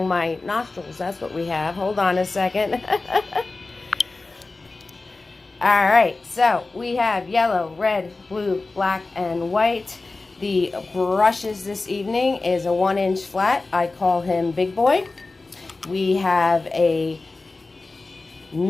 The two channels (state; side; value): quieter; right; 3.5 dB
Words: my nostrils. That's what we have. Hold on a second. All right, so we have yellow, red, blue, black, and white. The brushes this evening is a 1-inch flat. I call him Big Boy. We have a